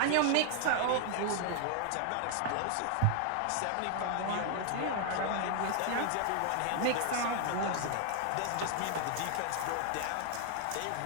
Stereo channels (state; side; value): different; both; correlation 0.00